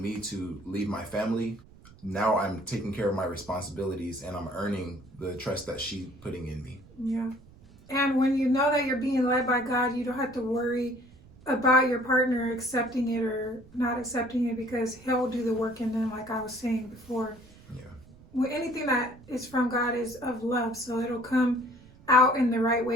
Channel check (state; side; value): noise; right; rumble, 23 dB below the sound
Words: me to lead my family, now I'm taking care of my responsibilities and I'm earning the trust that she's putting in me. Yeah. And when you know that you're being led by God, you don't have to worry about your partner accepting it or not accepting it, because he'll do the work in them, like I was saying before. Yeah. Well, anything that is from God is of love, so it'll come out in the right